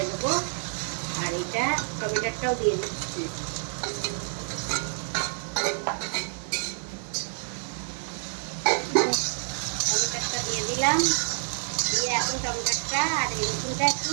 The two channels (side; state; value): left; silent; 59 dB below the other